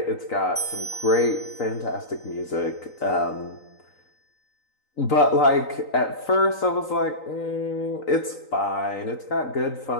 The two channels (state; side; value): late; right; 3.9 ms